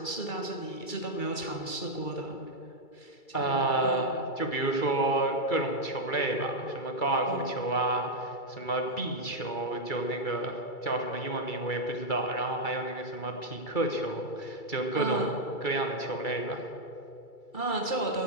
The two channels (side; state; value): right; late; 2.3 ms